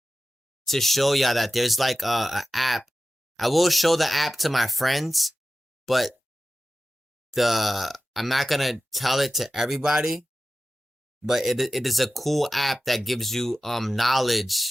to show y'all that there's like a app. I will show the app to my friends, but the I'm not gonna tell it to everybody. But it is a cool app that gives you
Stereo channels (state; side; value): normal; both; correlation 0.94